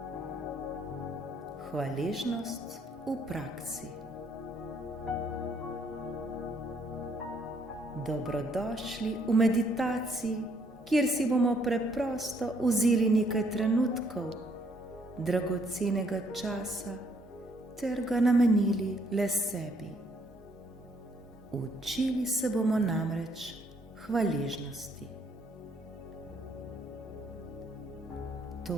Hvaležnost v praksi. Dobrodošli v meditaciji, kjer si bomo preprosto vzeli nekaj trenutkov dragocenega časa ter ga namenili le sebi. Učili se bomo namreč hvaležnosti.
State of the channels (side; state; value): both; normal; correlation 0.68